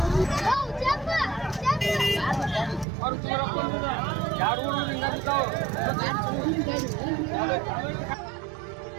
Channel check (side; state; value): left; drops out; at 2.9 s